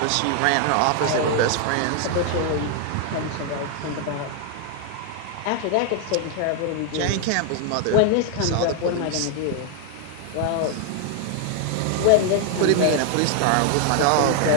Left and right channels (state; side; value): different; both; correlation 0.00